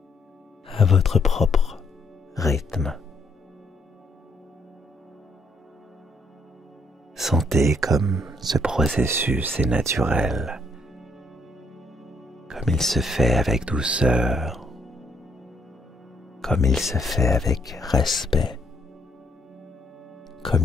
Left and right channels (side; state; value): both; normal; correlation 0.71